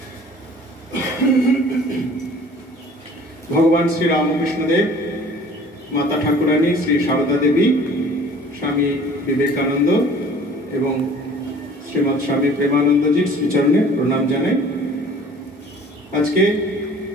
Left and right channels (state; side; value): normal; both; correlation 0.49